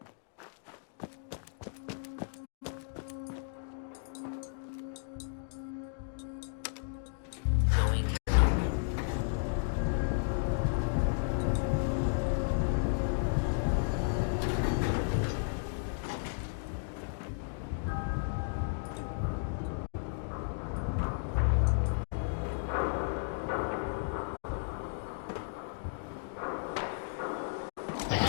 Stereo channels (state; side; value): silent; right; digital silence